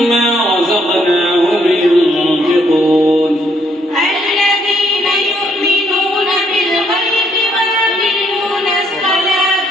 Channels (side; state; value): both; normal; correlation 0.70